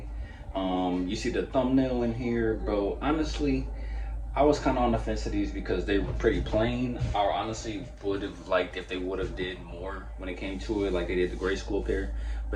You see the thumbnail in here, bro. Honestly, I was kind of on the fence of these because they were pretty plain. I honestly would have liked if they would have did more when it came to it, like they did the grade school pair.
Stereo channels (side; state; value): both; identical; correlation 1.00